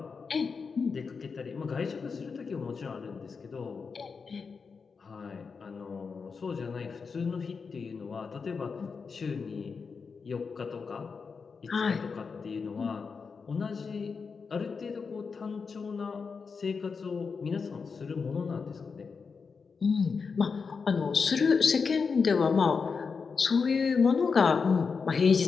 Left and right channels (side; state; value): right; quieter; 5.3 dB